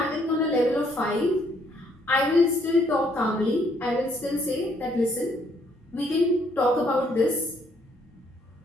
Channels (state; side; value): normal; both; correlation 0.67